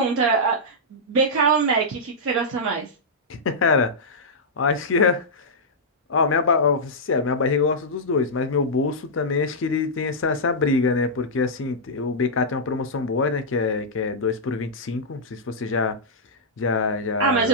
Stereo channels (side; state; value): both; normal; correlation -0.10